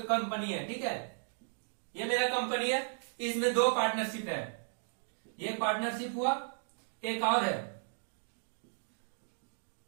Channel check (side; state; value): left; silent; digital silence